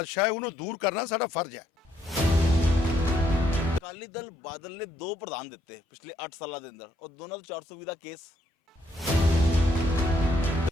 ਹੈ ਉਹਨੂੰ ਦੂਰ ਕਰਨਾ ਸਾਡਾ ਫਰਜ਼ ਹੈ। ਅਕਾਲੀ ਦਲ ਬਾਦਲ ਨੇ 2 ਪ੍ਰਧਾਨ ਦਿੱਤੇ ਪਿਛਲੇ 8 ਸਾਲਾਂ ਦੇ ਅੰਦਰ ਔਰ ਦੋਨਾਂ ਤੋਂ 420 ਦਾ ਕੇਸ।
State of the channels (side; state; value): both; normal; correlation 0.72